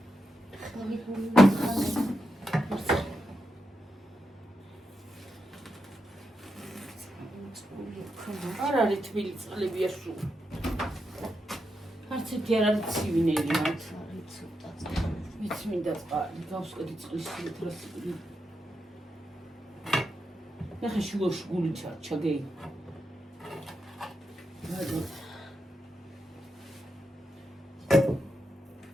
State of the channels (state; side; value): normal; both; correlation 0.86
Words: არ არის თბილი წყლებია სულ. არც ერთი არ არის ცივინერი მათ. არის ცოტა. მეც მინდა წყალი, გავსკედი წყლის ლითრასი. ნახე შუაში გული ჩაგეი.